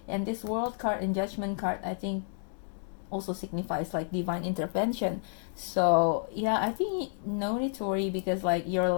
and this world card and judgment card, I think, also signifies like divine intervention. So yeah, I think no need to worry, because like your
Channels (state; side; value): silent; right; digital silence